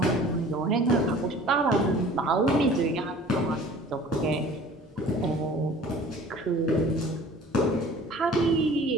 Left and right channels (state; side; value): normal; both; correlation 0.47